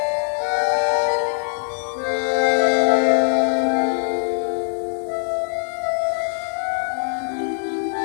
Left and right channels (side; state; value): right; silent; digital silence